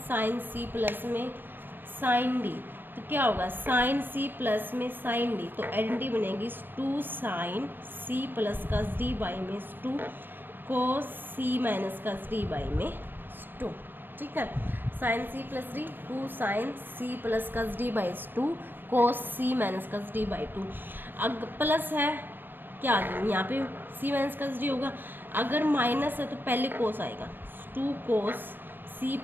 सी प्लस में साइन डी, तो क्या होगा साइन सी प्लस में साइन डी, तो आइडेंटिटी बनेगी 2 साइन सी प्लस का डी बाई में 2 कोस सी माइनस का डी बाई में 2, ठीक है। Sine C plus D 2 sine C plus का D by 2 cos C minus का डी बाई 2। अगर प्लस है क्या आ गया यहाँ पे सी माइनस का डी होगा, अगर माइनस है तो पहले कोस आएगा 2 कोस सी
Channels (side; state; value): left; late; 0.094 ms